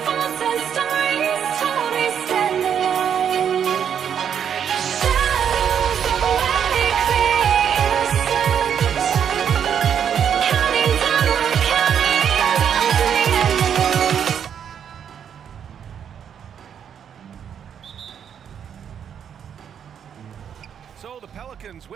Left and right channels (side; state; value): left; quieter; 8.3 dB